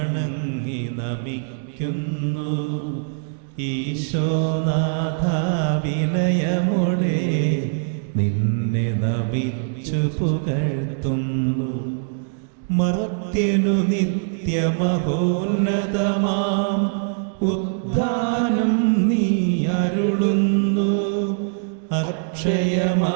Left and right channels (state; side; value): silent; left; digital silence